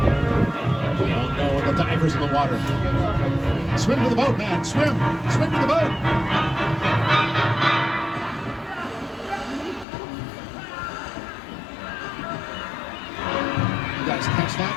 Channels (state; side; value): drops out; right; at 9.9 s